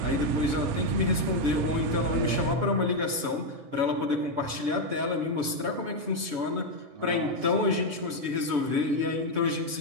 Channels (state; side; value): late; left; 7.0 ms